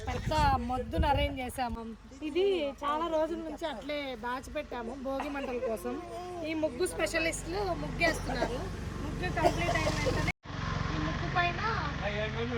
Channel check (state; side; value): identical; both; correlation 1.00